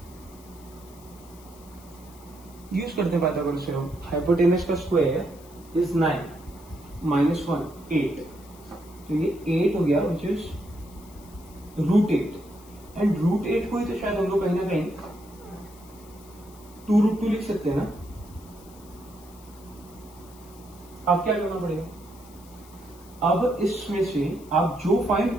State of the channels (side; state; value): left; noise; hiss, 24 dB below the sound